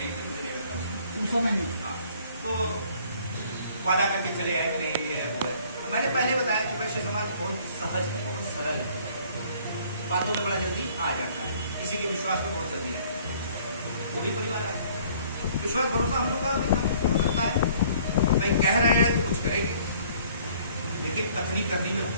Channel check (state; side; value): inverted; both; correlation -0.57